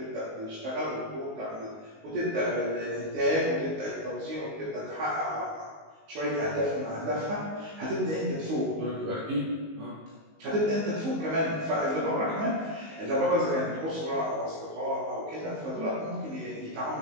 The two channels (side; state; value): left; late; 19 ms